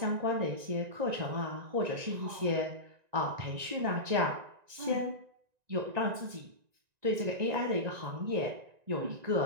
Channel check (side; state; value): left; late; 1.9 ms